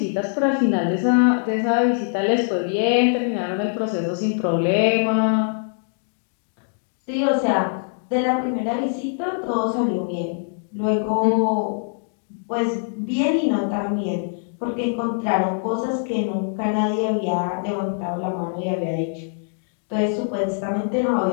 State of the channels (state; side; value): silent; right; digital silence